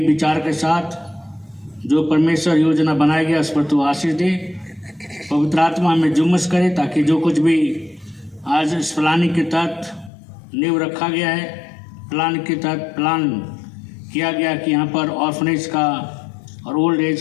विचार के साथ जो परमेश्वर योजना बनाया गया उस पर तू आशीष दे। पवित्र आत्मा हमें जुम्मस करे ताकि जो कुछ भी आज इस प्लानिंग के तहत नींव रखा गया है, प्लान के तहत प्लान किया गया कि यहाँ पर ऑर्फनेज का और ओल्ड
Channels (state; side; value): drops out; right; at 10.1 s